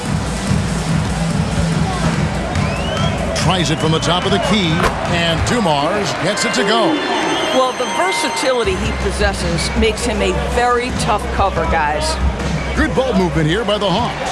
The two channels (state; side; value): identical; both; correlation 1.00